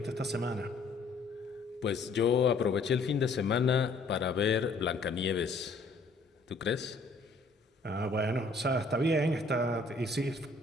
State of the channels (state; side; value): quieter; right; 3.4 dB